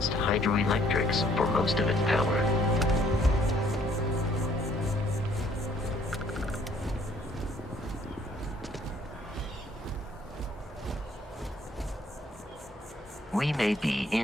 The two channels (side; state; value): both; normal; correlation 0.62